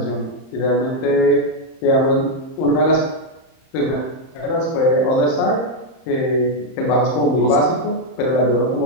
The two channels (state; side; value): late; right; 30 ms